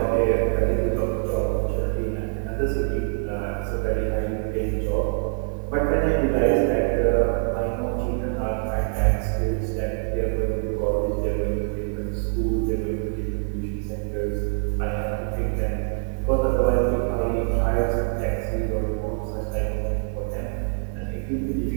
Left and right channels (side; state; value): left; silent; digital silence